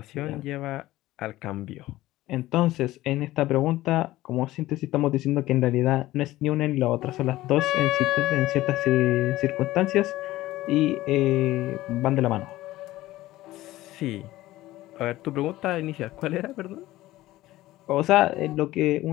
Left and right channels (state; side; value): quieter; right; 16.5 dB